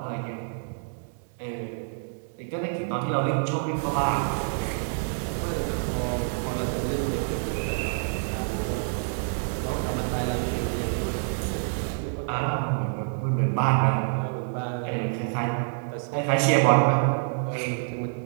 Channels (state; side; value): silent; left; digital silence